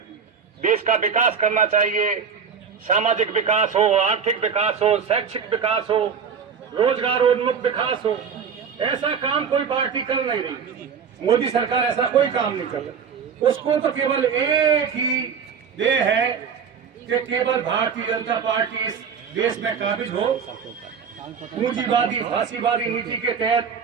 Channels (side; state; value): left; quieter; 6.6 dB